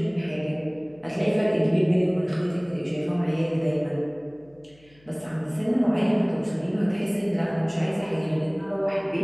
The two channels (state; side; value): noise; left; hum, 30 dB below the sound